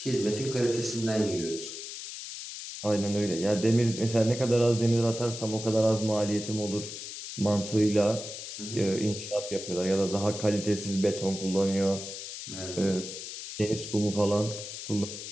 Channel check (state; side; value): noise; left; hiss, 9 dB below the sound